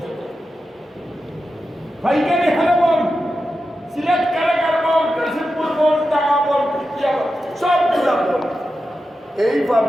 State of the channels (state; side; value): normal; both; correlation 0.90